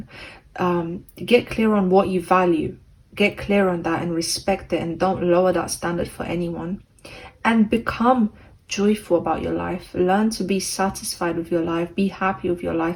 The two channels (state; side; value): identical; both; correlation 1.00